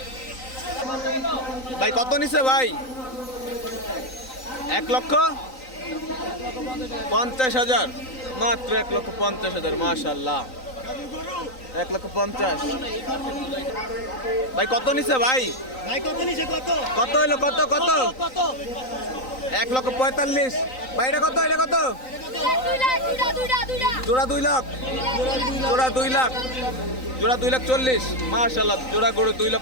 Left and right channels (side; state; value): right; late; 3.9 ms